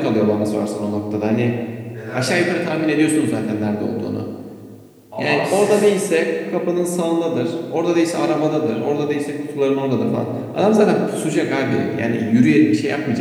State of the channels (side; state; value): both; identical; correlation 1.00